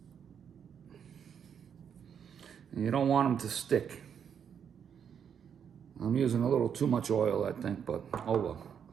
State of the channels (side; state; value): left; quieter; 7.8 dB